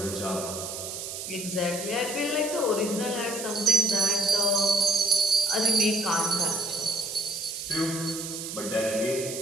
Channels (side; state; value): right; noise; hiss, 7 dB below the sound